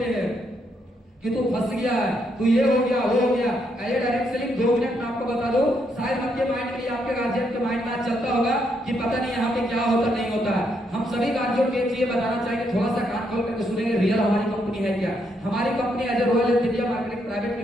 हैं कि तू फंस गया है, तू ये हो गया वो हो गया। ये डायरेक्ट सेलिंग 2 मिनट में आपको बता दो, शायद आपके माइंड के लिए आपके गार्जियन के माइंड में आज चलता होगा कि पता नहीं यहाँ पे क्या होता नहीं होता है। हम सभी गार्जियन को एक चीज बताना चाहेंगे, थोड़ा सा कान खोल करके सुनेंगे, रियल हमारी कंपनी है क्या। हमारी company as a Royal Energy India Marketing Private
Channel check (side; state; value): both; normal; correlation 0.76